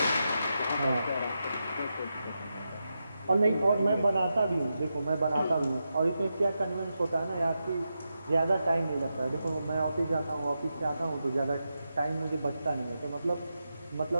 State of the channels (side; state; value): both; inverted; correlation -0.88